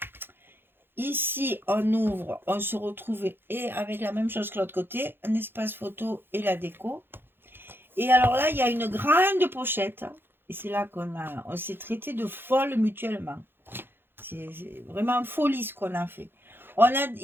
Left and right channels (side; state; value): left; late; 0.10 ms